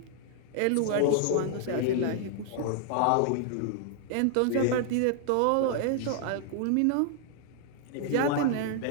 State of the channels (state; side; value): different; both; correlation 0.00